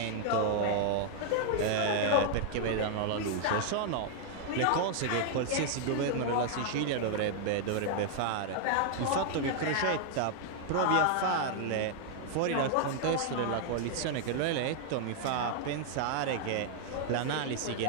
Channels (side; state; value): both; different; correlation 0.00